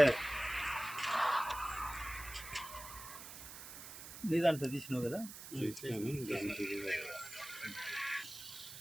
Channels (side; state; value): right; noise; hiss, 12 dB below the sound